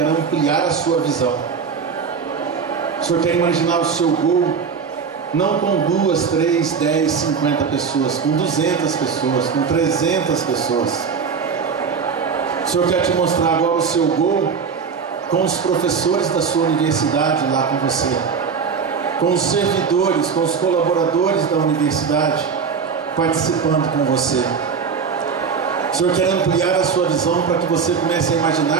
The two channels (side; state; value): left; quieter; 5.9 dB